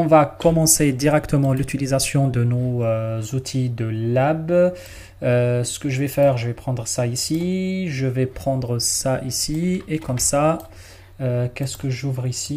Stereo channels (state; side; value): identical; both; correlation 1.00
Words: va commencer directement l'utilisation de nos outils de lab. Ce que je vais faire, je vais prendre ça ici, je vais prendre ça ici, et comme ça, qu'est-ce que j'ouvre